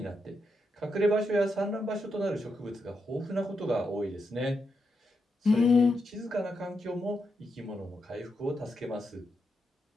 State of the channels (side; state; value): both; normal; correlation 0.84